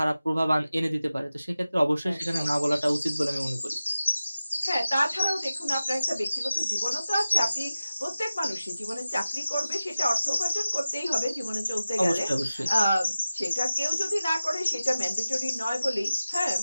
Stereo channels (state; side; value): inverted; both; correlation -0.95